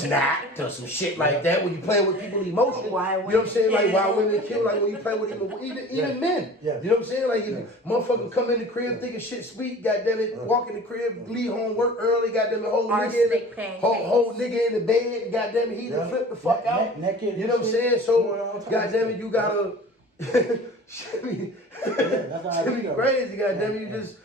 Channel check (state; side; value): normal; both; correlation 0.42